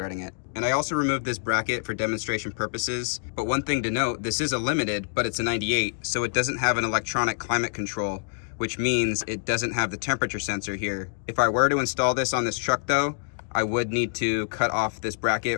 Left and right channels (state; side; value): silent; right; digital silence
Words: it. And I also removed this bracket for demonstration purposes. But one thing to note, this is a limited, but it's a 98, so it doesn't have an electronic climate control, which means it doesn't have the temperature sensor here. If I were to install this on this truck though, I would need to cut off this bracket